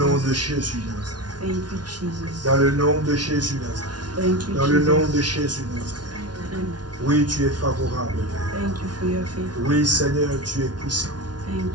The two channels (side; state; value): left; late; 0.69 ms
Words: nom de Jésus Nazareth. Thank you, Jesus. Dans le nom de Jésus Nazareth. Thank you, Dans le nom Jesus. de Jésus Nazareth. Amen. Oui, tu es favorable, Père. Thank you for your faith. Oui, Seigneur, tu es puissant. Thank